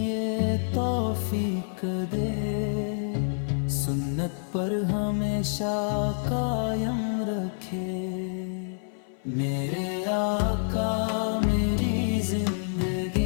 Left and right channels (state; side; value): silent; right; 57 dB below the other